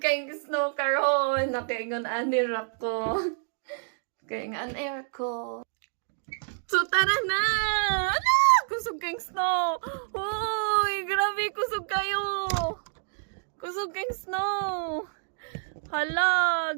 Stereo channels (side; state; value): left; silent; digital silence